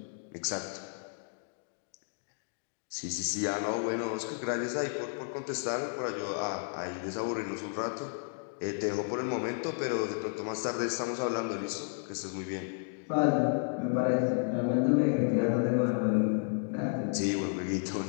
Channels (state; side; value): silent; right; 56 dB below the other